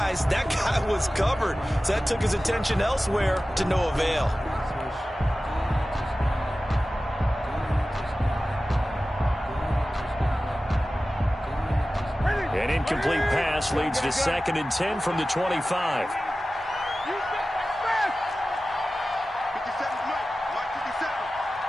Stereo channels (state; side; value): normal; both; correlation 0.95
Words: that guy was covered. So that took his attention elsewhere to no avail. An incomplete pass leads to 2nd and 10 from the 25.